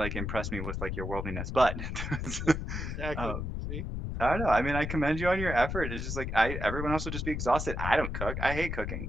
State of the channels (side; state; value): left; noise; rumble, 4 dB below the sound